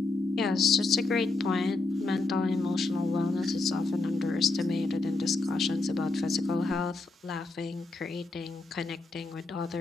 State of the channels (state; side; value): quieter; right; 3.4 dB